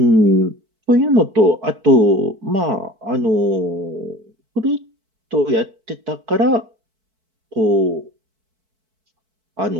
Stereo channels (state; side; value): late; left; 4.6 ms